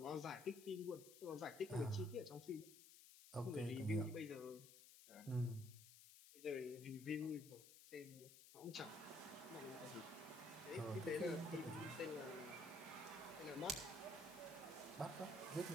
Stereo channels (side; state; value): left; noise; hiss, 16 dB below the sound